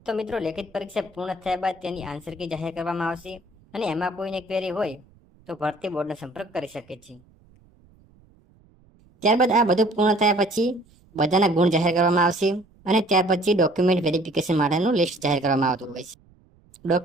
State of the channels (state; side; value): noise; right; rumble, 30 dB below the sound